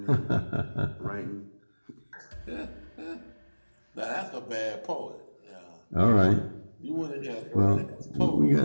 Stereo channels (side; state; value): both; inverted; correlation -1.00